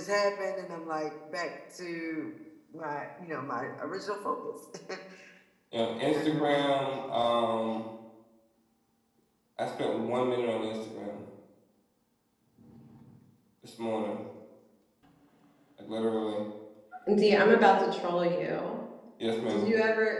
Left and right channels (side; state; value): both; identical; correlation 1.00